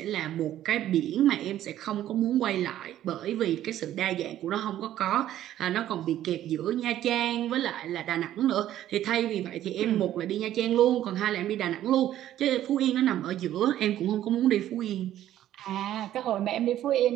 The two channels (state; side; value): quieter; left; 12.4 dB